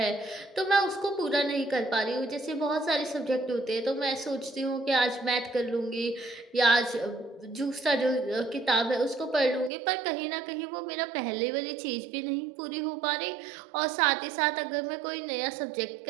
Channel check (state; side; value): drops out; left; at 9.7 s